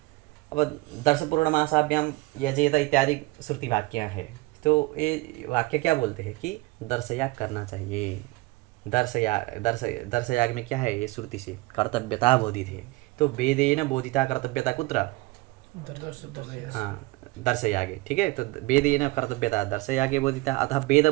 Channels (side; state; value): left; quieter; 21.7 dB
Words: अब दर्श पूर्णमासाभ्याम यजेत इत्यादि श्रुति वाक्य है, तो ये वाक्य क्या बोलते हैं कि दर्शयाग करना चाहिए। दर्शयाग में क्या है? ये श्रुति से कर्तव्यता बोधित है। तो वेदेन बोधिता कर्तव्यता कुत्र? हाँ, दर्शयागे, ठीक है। तो वेदेन कर्तव्यता दर्शयागे बोधिता, अतः वेद